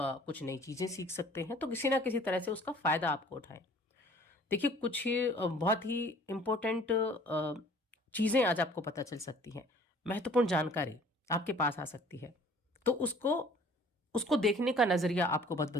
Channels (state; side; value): normal; both; correlation 0.52